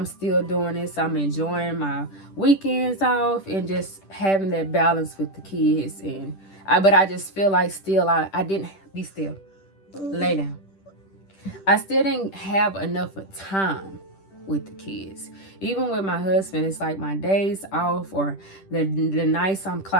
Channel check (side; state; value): right; late; 10 ms